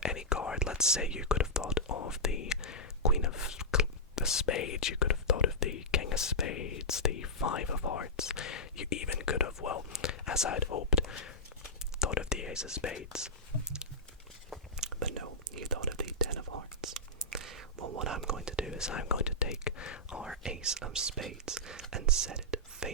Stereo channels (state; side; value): normal; both; correlation -0.12